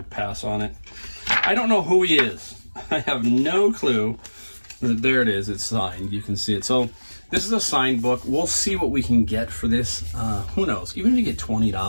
pass on it. I don't know who he is. I have no clue. There it is. It's signed. You can see it. So this is a signed book. We'll see what we can get for this. Who knows? Even if you get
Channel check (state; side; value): inverted; both; correlation -1.00